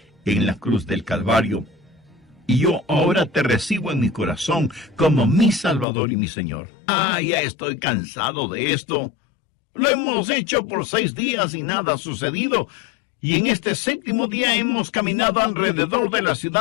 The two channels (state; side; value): drops out; right; at 5.9 s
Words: en la cruz del Calvario, y yo ahora te recibo en mi corazón como mi Salvador y mi Señor. Ya estoy cansado de esto. Lo hemos hecho por 6 días y nada ha sucedido, y en este séptimo día hemos caminado alrededor de la